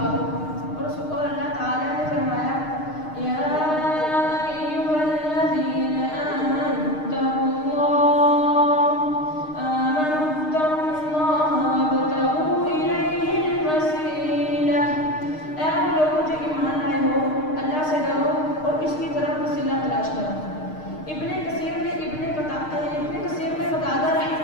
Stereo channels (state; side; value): late; right; 6.5 ms